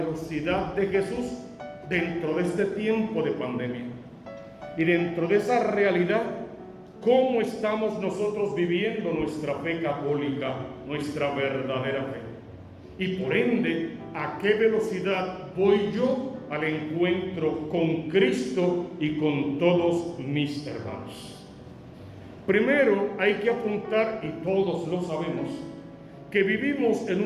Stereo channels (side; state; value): both; identical; correlation 1.00